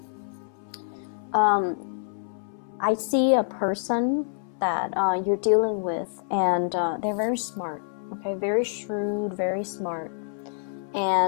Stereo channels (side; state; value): right; silent; 60 dB below the other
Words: I see a person that you're dealing with, and they're very smart, okay, very shrewd, very smart,